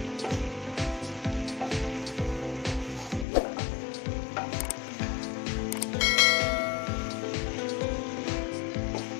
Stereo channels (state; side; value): drops out; right; at 3.2 s